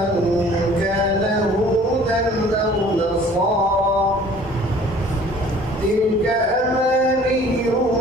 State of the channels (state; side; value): normal; both; correlation 0.51